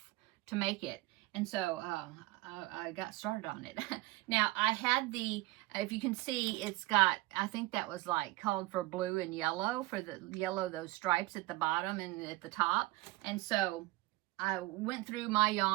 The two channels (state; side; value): quieter; left; 19.8 dB